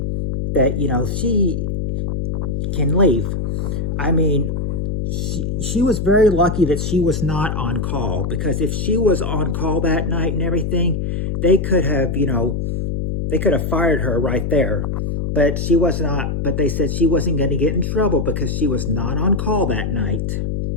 that, she can leave. She was very lucky that she was not on call, because if she was on call that night and everything, they could have, they could have fired her right there. But she was not, but they said she wasn't going to get in trouble because she was not on call that night.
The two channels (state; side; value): noise; left; hum, 2 dB below the sound